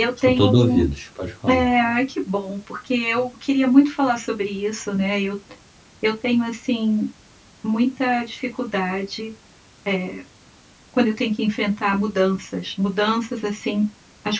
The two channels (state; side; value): identical; both; correlation 1.00